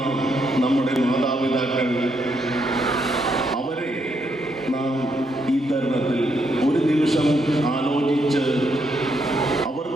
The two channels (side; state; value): both; normal; correlation 0.77